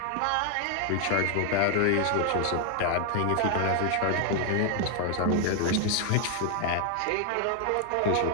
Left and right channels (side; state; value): both; different; correlation 0.00